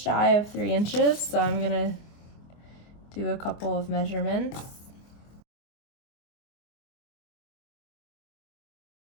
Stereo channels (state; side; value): late; right; 24 ms